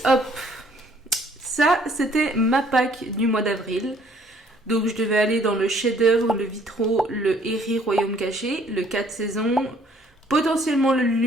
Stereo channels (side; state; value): both; normal; correlation 0.61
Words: Hop, ça c'était ma pack du mois d'avril. Donc je devais aller dans le chef-d'œuvre, le Vitro, le Eri Royaume Caché, le 4 saisons, potentiellement le